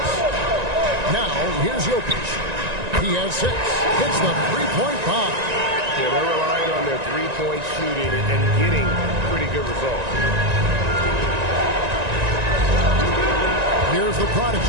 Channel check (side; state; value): left; late; 1.9 ms